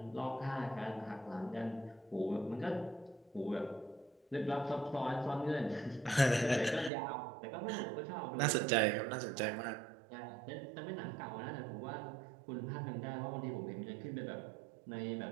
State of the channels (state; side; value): drops out; left; at 6.9 s